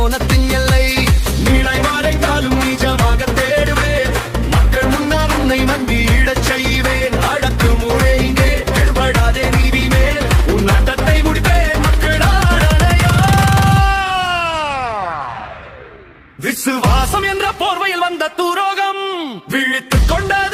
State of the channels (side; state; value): both; identical; correlation 1.00